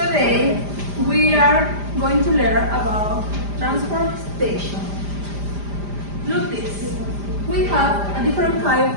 we are going to learn about transportation. Look this. We have a different kind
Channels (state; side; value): late; left; 5.0 ms